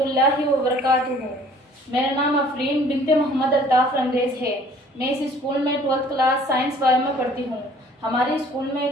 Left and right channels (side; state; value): both; normal; correlation 0.54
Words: वबरकातुहू। मेरा नाम अफरीन बिनते मोहम्मद अल्ताफ़ रंगरेज है। मैं इस स्कूल में 12th क्लास साइंस वाले में पढ़ती हूँ। हमारे स्कूल में